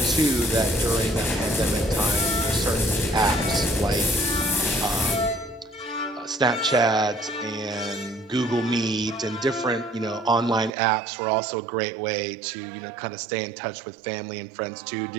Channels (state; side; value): drops out; left; at 10.8 s